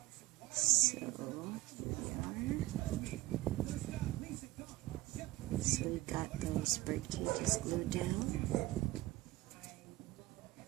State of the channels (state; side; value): quieter; left; 17.7 dB